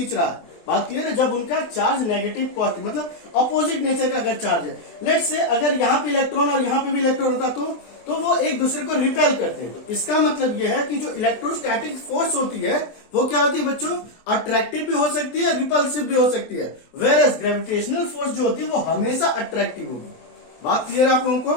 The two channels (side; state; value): right; late; 24 ms